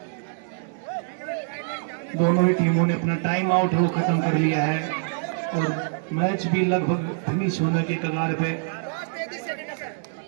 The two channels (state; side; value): silent; left; digital silence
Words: दोनों ही टीमों ने अपना टाइम आउट वो खत्म कर लिया है और मैच भी लगभग फिनिश होने के कगार पे